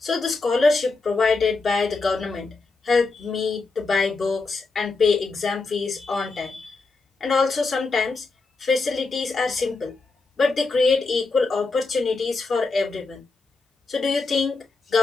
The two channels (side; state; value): right; quieter; 3.9 dB